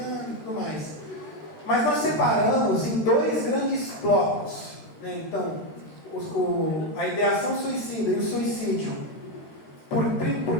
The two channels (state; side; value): late; right; 13 ms